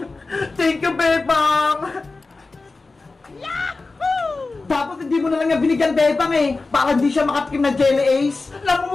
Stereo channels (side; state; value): right; quieter; 3.7 dB